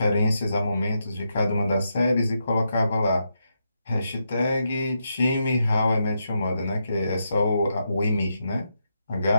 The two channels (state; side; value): inverted; both; correlation -0.83